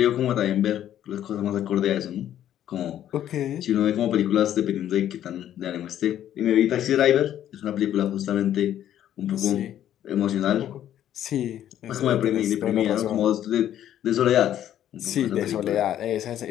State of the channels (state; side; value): quieter; right; 11.3 dB